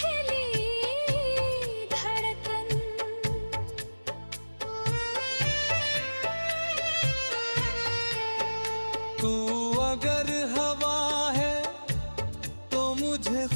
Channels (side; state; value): both; inverted; correlation -1.00